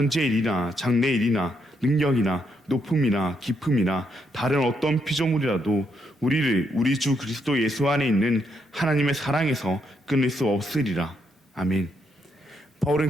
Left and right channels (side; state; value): both; normal; correlation 0.77